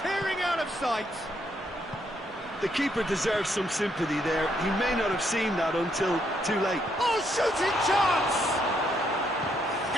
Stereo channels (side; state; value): both; normal; correlation 0.74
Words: out of sight! The keeper deserves some sympathy there. He may not have seen that until too late. Oh, shooting chance!